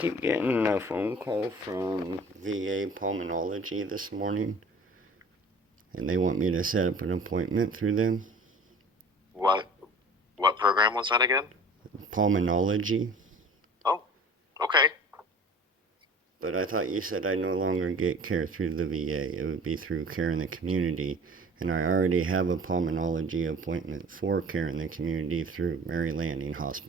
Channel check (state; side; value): normal; both; correlation 0.45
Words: getting a phone call from VA Pulmonology this morning, and they want me to set up an appointment through them. What program was that again? Pulmonology. Oh, okay. But I thought you said I no longer get care through the VA. It would be through care in the community. And I already have a pulmonology appointment for care in the community through Mary Landing